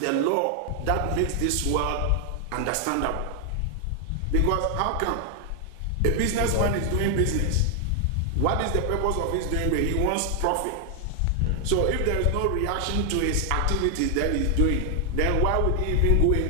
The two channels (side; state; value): both; different; correlation 0.00